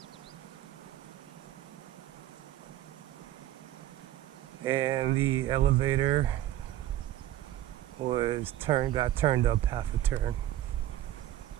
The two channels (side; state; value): left; quieter; 13.4 dB